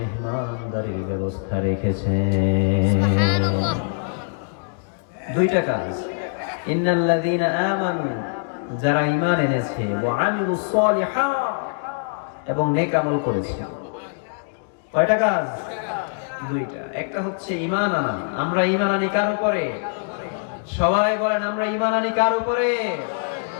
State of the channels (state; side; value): silent; right; digital silence